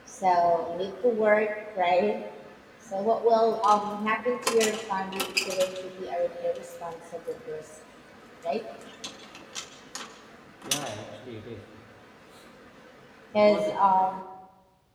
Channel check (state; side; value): identical; both; correlation 1.00